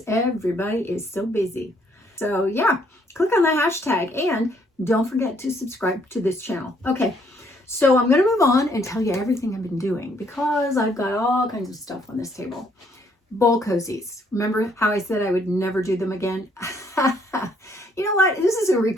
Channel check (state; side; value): normal; both; correlation 0.67